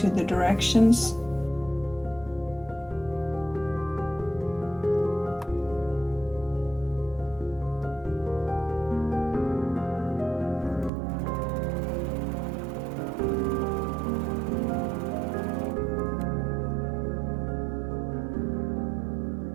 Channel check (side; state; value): left; drops out; at 10.9 s